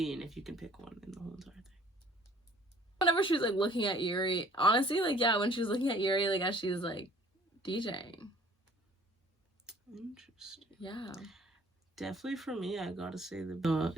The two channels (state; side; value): normal; both; correlation 0.54